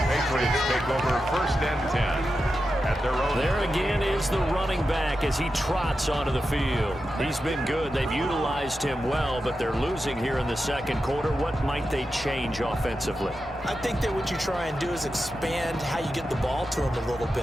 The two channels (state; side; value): normal; both; correlation 0.90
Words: Patriots take over 1st and 10. At their own. There again is the running back as he trots onto the field. He's been good. They've utilized him well, but they're losing here in the second quarter. What might they change offensively? I think that what you try and do is expand how you get the ball to him a little